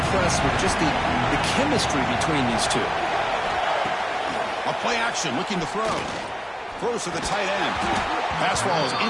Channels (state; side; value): identical; both; correlation 1.00